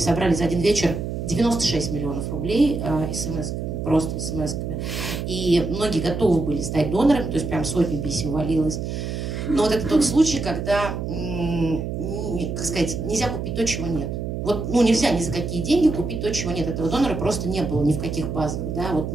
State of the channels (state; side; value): noise; right; hum, 4 dB below the sound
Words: за один вечер 96 миллионов рублей смс-ками, просто смс-ками. И многие готовы были стать донорами, то есть прям сотни писем валилось. Но вот это тот случай, когда, как сказать, нельзя купить то, чего нет. Вот, ну, нельзя ни за какие деньги купить то, чего нет. Этого донора просто не было ни в каких базах, да, вот,